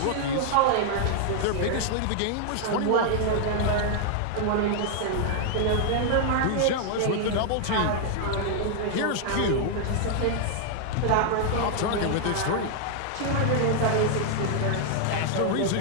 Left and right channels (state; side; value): different; both; correlation 0.00